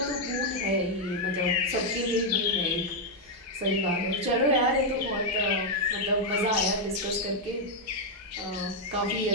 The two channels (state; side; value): normal; both; correlation 0.00